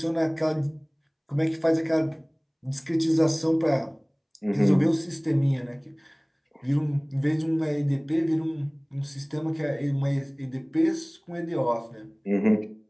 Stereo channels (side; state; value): both; identical; correlation 1.00